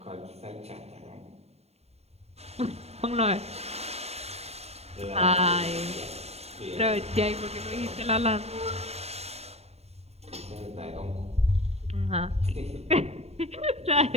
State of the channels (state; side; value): late; left; 0.30 ms